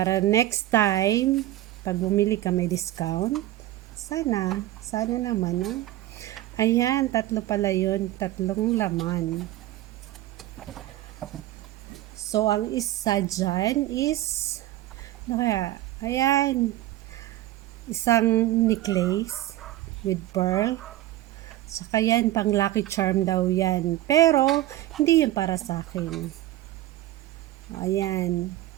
next time, pag bumili ka may discount, sana naman, no? Ayan, 3 pala yun, 3 laman. So, ang isa dyan is, ayan, isang necklace with pearl. Saka yan, pang lucky charm daw yan. Pero, hindi yan para sa akin. Ayan.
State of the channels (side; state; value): left; quieter; 15.0 dB